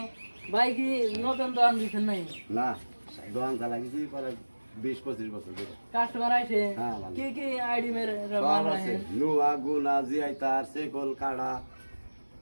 ভাই কি নতুন দোকান দিচ্ছেন নাই? না দোকান চালাইছি পরে 20-25 বছর ধরে। কাস্টমার আছে হ্যাঁ, ভালো। কি কি আইডি মেরে সব আছে নুয়া গুনা জিআইতার সেকল কাড়া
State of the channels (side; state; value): both; inverted; correlation -1.00